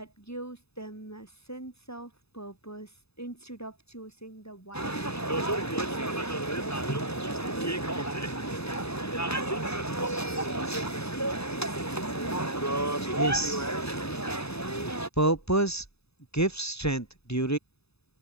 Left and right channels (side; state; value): right; late; 0.79 ms